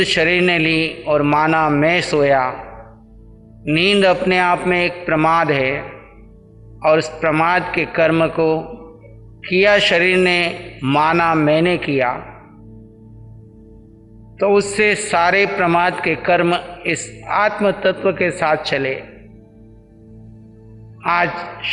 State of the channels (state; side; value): identical; both; correlation 1.00